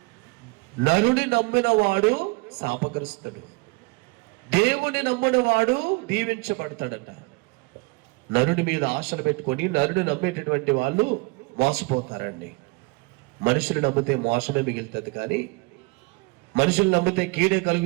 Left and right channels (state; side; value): quieter; left; 27.1 dB